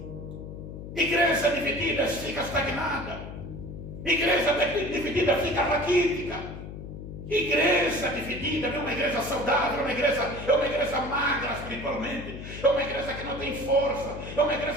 Igreja dividida fica estagnada. Igreja dividida fica raquítica. Igreja dividida não é uma igreja saudável, é uma igreja magra espiritualmente, é uma igreja que não tem força, é uma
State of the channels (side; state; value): left; noise; hum, 10 dB below the sound